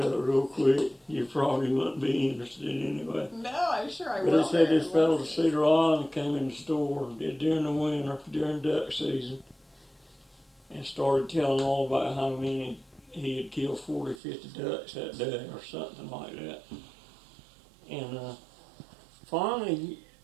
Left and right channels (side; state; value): left; drops out; at 14.2 s